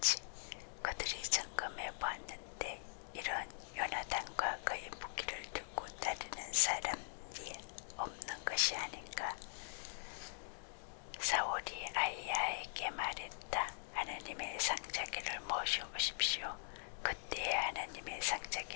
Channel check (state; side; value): silent; right; digital silence